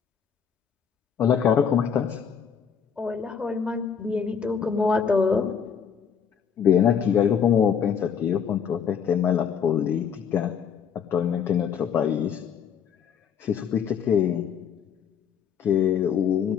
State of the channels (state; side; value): quieter; right; 7.4 dB